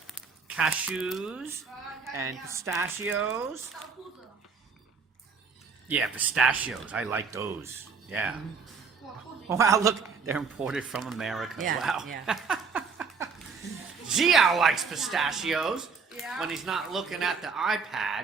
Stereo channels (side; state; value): left; quieter; 5.3 dB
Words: cashews and pistachios. Yeah, pistachios. I like those. Yeah. Wow, look, they're imported from America. Yeah, Wow. yeah. Jiao likes pistachios when he's not looking at the